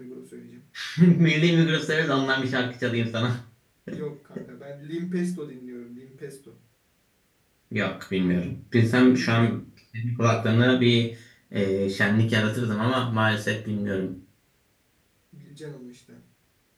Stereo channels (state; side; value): identical; both; correlation 1.00